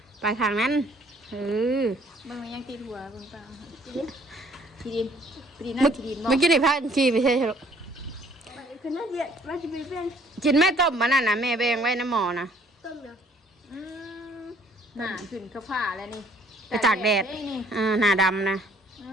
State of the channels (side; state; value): both; normal; correlation 0.60